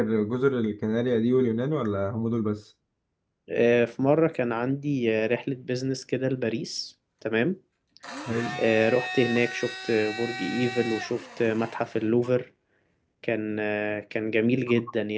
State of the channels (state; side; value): identical; both; correlation 1.00